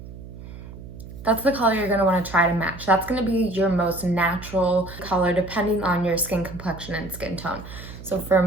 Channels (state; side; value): noise; right; hum, 14 dB below the sound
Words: That's the color you're gonna wanna try to match. That's gonna be your most natural color depending on your skin complexion and skin tone. So for